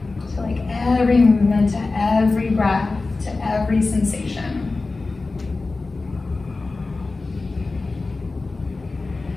Every movement, to every breath, to every sensation.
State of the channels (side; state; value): right; quieter; 3.6 dB